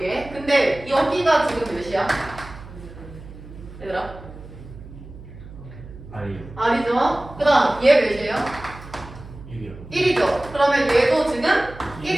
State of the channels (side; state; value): right; noise; hum, 16 dB below the sound